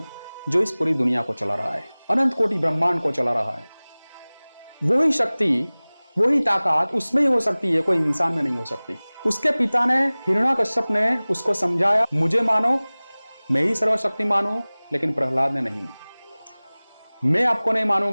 जो इस पूरी दुनिया को चला रहा है, अनंत कोटि ब्रह्मांड को चला रहा है। वही शक्ति, वही ताकत उसमें ही हो सकती है, कोई इंसान में नहीं हो सकती। उसके पिता ने, हिरण्याकश्यप ने उसको समझाया, मुझे मानो, मैं ही सर्वशक्तिमान हूं, लेकिन प्रहलाद ने नहीं। मैं आपको नहीं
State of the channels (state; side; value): inverted; both; correlation -1.00